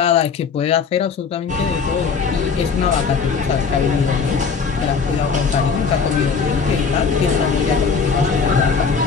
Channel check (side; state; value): right; quieter; 5.6 dB